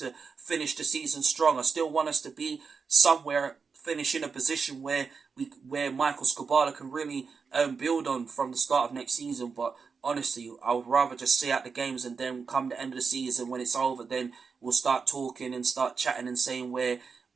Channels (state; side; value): quieter; left; 5.3 dB